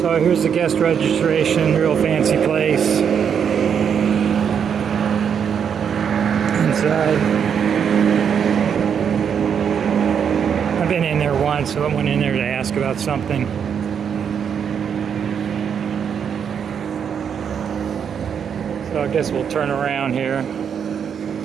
So here's the guest registration, real fancy place. Inside. I've been in there once, so I went in there to ask about something. So I guess we'll turn around here.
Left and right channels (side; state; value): left; quieter; 7.6 dB